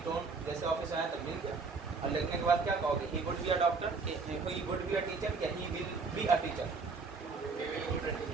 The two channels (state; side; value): quieter; left; 4.5 dB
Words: जैसे ऑफिस आया तो मिल गया, और लिखने के बाद क्या कहोगे, he would be a doctor, he would be a teacher, या he will be a teacher.